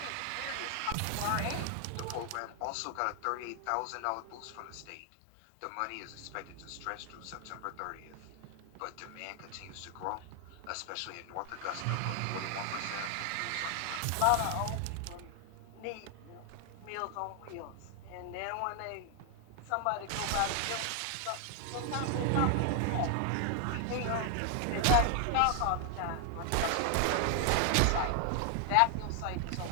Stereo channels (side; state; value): both; different; correlation 0.00